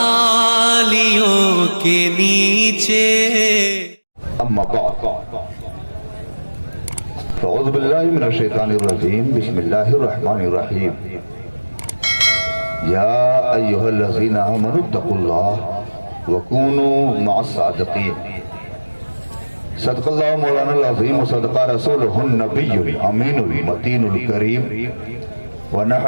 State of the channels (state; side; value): inverted; both; correlation -1.00